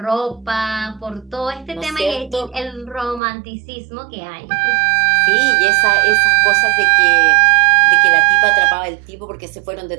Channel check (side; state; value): left; drops out; at 3.2 s